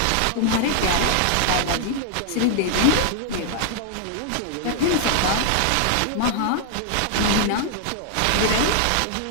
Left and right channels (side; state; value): both; different; correlation 0.00